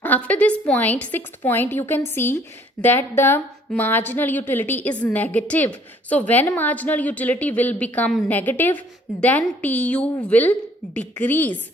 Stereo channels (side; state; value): both; normal; correlation 0.59